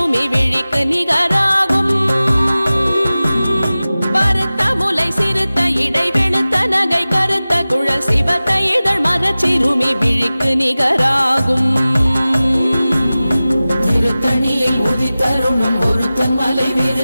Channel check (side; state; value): both; inverted; correlation -0.97